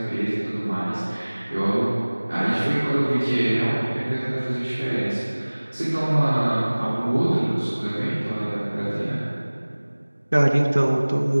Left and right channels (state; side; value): inverted; both; correlation -1.00